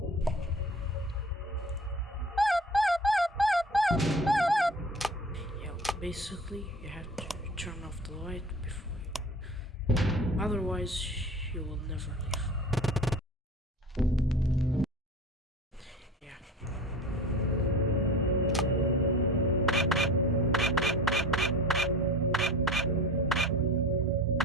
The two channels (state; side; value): normal; both; correlation 0.37